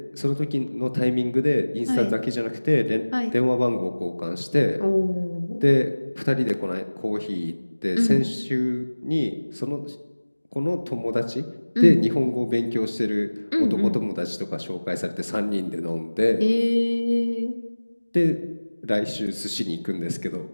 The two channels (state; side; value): inverted; both; correlation -1.00